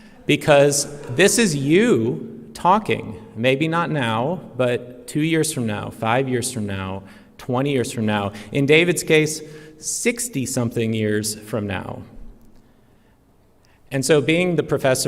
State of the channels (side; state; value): both; identical; correlation 1.00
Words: Because this is you talking, maybe not now, but 2 years from now, 5 years from now, 20 years from now. In David's case, 60-something years from now. And so being the